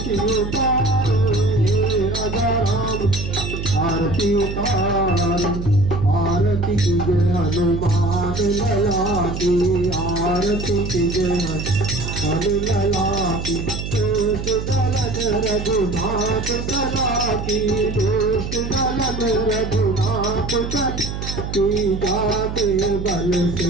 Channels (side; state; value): right; noise; hum, 6 dB below the sound